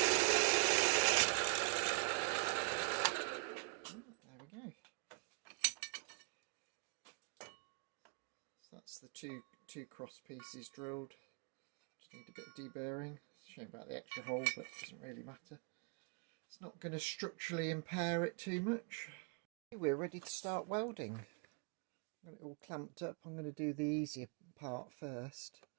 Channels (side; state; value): left; quieter; 36.3 dB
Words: we go. So that's the two cross pieces drilled. Just need a bit of deburring. It's a shame about the extra hole, but it doesn't really matter. It's not going to structurally impair it too much. We're ready to start welding. I've got it all clamped up. I'm going to do the easier part first,